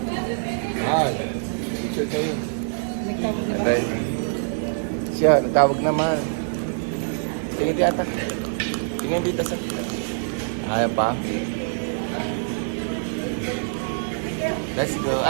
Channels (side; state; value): left; silent; digital silence